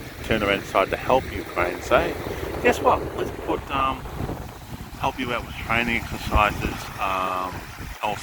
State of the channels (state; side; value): identical; both; correlation 1.00